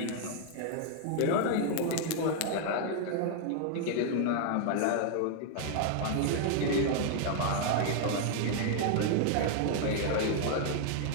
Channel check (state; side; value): different; both; correlation 0.00